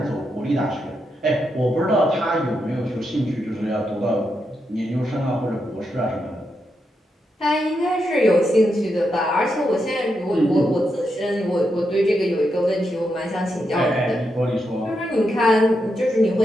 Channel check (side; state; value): both; normal; correlation 0.84